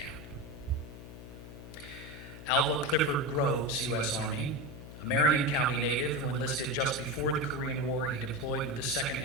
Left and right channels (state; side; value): noise; left; hum, 13 dB below the sound